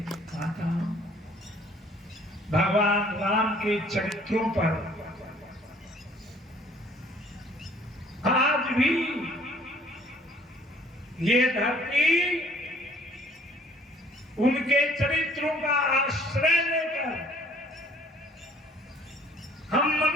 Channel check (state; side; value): normal; both; correlation 0.57